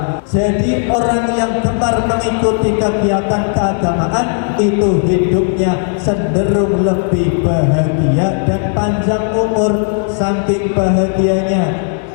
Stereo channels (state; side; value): silent; right; 56 dB below the other